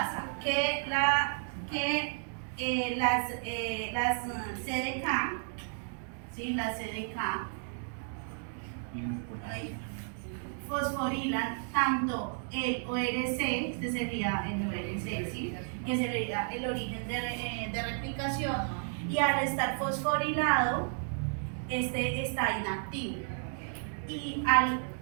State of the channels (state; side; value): silent; left; 56 dB below the other